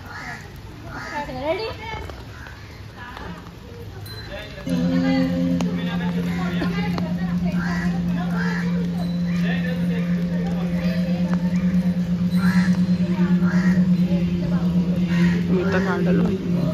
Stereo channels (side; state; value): both; identical; correlation 1.00